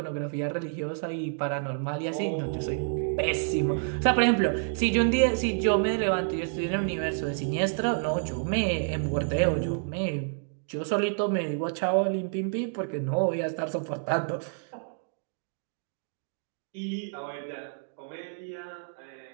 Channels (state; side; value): silent; left; digital silence